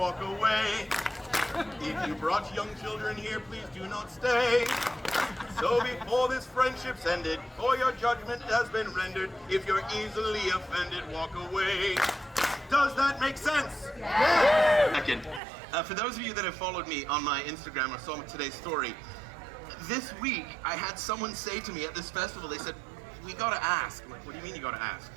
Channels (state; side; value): drops out; left; at 15.4 s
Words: away. If you brought young children here, please do not stay. So before this friendship's ended, or your judgment has been rendered, if you're easily offended, walk away. Does that make sense? Yeah. Second, for those of you that have followed me on my Instagram or saw today's story, this week I had someone say to me at this festival, they said, we gotta ask. I'm like, what do you mean you gotta ask?